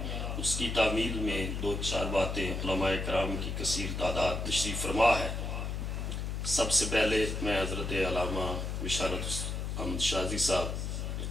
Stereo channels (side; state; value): left; noise; hum, 3 dB below the sound